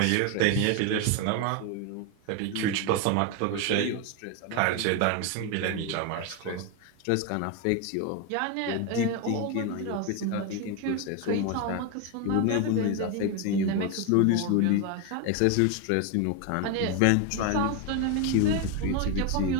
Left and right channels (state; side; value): different; both; correlation 0.02